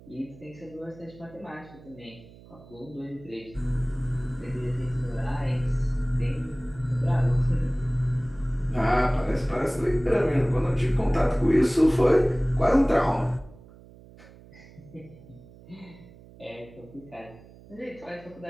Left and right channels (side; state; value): right; noise; hum, 22 dB below the sound